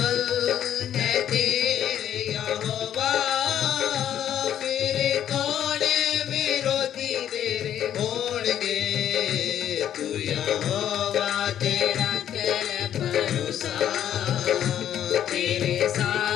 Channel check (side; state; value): right; quieter; 10.4 dB